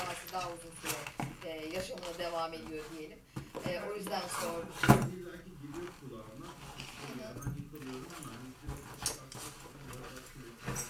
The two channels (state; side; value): identical; both; correlation 1.00